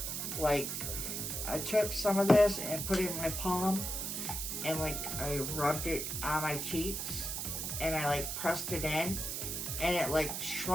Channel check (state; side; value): noise; right; hiss, 3 dB below the sound